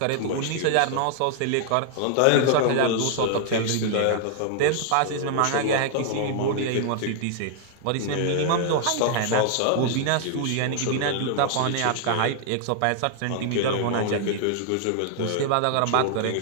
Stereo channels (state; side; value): different; both; correlation -0.01